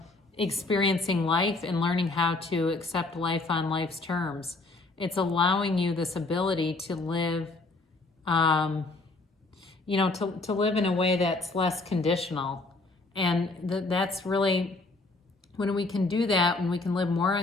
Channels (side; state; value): right; quieter; 3.3 dB